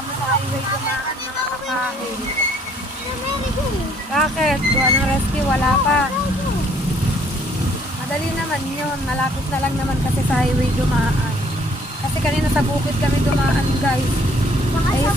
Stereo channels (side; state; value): both; normal; correlation 0.62